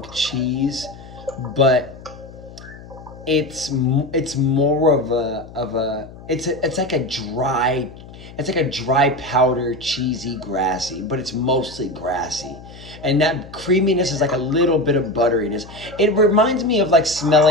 cheese, but it's more it's like a dry powder, cheesy, grassy, but it's mostly grassy. And that creaminess is like a little bit of butteriness. It reminds me of like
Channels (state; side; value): noise; left; hum, 17 dB below the sound